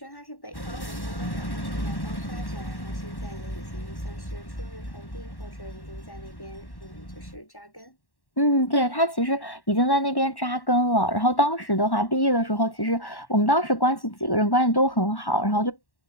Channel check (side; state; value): right; late; 1.1 ms